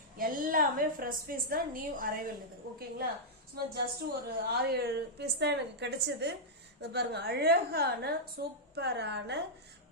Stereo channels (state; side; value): normal; both; correlation -0.09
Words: எல்லாமே ஃப்ரெஷ் பீஸ் தான், நியூ அரைவல் இது. ஓகேங்களா? சும்மா ஜஸ்ட் ஒரு 6-7 பீஸ் தான் எனக்கு கிடைச்சது. இது பாருங்க, அழகான சூப்பரான